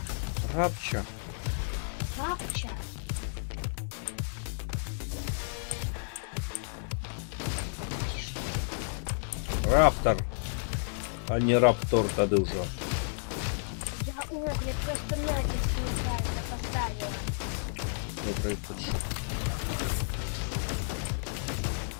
Рапча. Рапча. Ти что? Раптор, а не раптор тады ўжо. Я огляд просто натиск неправильно поставила. Добрый путь.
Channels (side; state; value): right; silent; digital silence